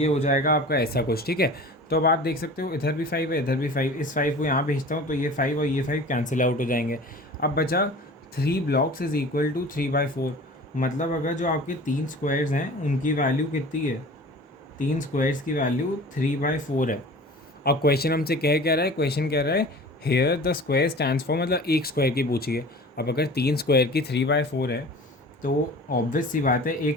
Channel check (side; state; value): both; normal; correlation 0.41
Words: हो जाएगा आपका ऐसा कुछ। ठीक है, तो अब आप देख सकते हो इधर भी 5 है, इधर भी 5, इस 5 को यहाँ भेजता हूँ तो ये 5 और ये 5 कैंसिल आउट हो जाएंगे। अब बचा 3 ब्लॉक्स इज इक्वल टू 3/4, मतलब अगर जो आपके 3 स्क्वायर्स हैं उनकी वैल्यू कितनी है, 3 स्क्वायर्स की वैल्यू 3/4 है। अब क्वेश्चन हमसे क्या रहा है, क्वेश्चन कह रहा है here the square stands for, मतलब एक स्क्वायर की पूछिए। अब अगर 3 स्क्वायर की 3/4 है तो ऑब्वियस सी बात है